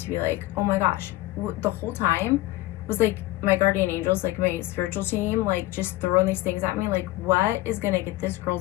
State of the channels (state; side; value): quieter; right; 17.7 dB